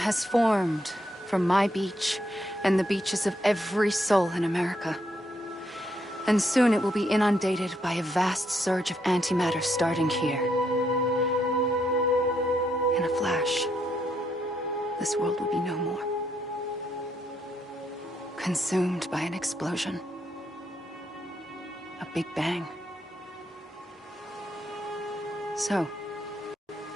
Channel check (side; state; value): both; normal; correlation 0.76